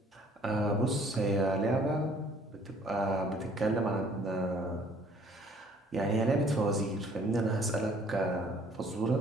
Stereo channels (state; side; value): normal; both; correlation 0.58